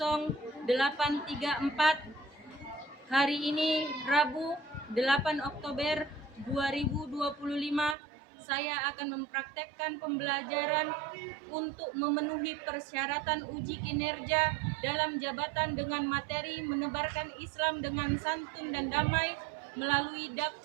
Hari ini Rabu 8 Oktober 2025 saya akan mempraktekkan pembelajaran untuk memenuhi persyaratan uji kinerja dalam jabatan dengan materi menebarkan Islam dengan santun dan damai melalui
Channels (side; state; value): left; drops out; at 8.0 s